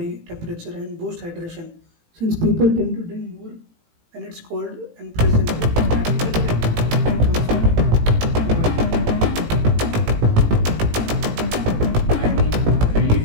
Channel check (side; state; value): left; late; 18 ms